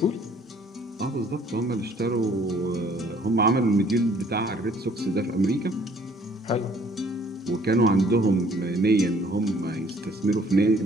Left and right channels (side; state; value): both; normal; correlation 0.59